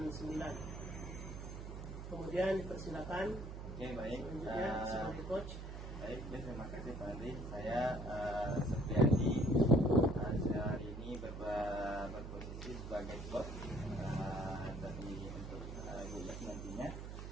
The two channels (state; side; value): noise; right; hum, 8 dB below the sound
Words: 9. Kemudian dipersilakan Oke, baik. selanjutnya sebagai coach. Baik, ya, terima kasih Pak Andri. Saya Septiadi, saya hari ini berposisi sebagai coach dari untuk Guyas nantinya.